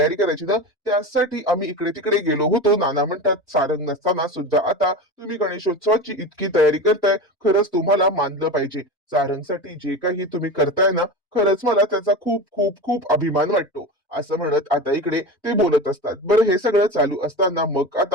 करायची ना, त्यासाठी आम्ही इकडे तिकडे गेलो होतो. नाना म्हणतात, सारंग नसताना सुद्धा आता तुम्ही गणेशोत्सवाची इतकी तयारी करताय, खरंच तुम्हाला मानलं पाहिजे. सारंगसाठी जे काही तुम्ही करताय ना, खरंच मला त्याचा खूप खूप खूप अभिमान वाटतो. असं म्हणत आता इकडे ते बोलत असतात. बरं, हे सगळं चालू असताना मग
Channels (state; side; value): normal; both; correlation 0.26